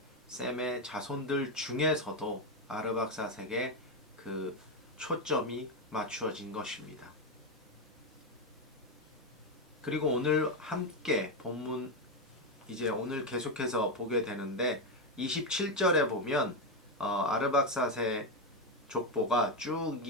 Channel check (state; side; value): normal; both; correlation 0.08